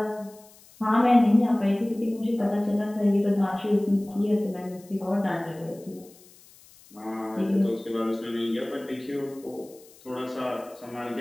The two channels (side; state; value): left; noise; hiss, 25 dB below the sound